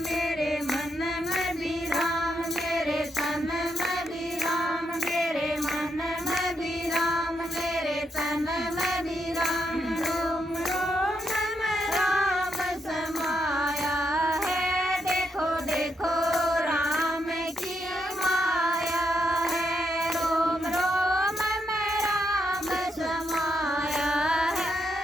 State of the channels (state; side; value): normal; both; correlation 0.81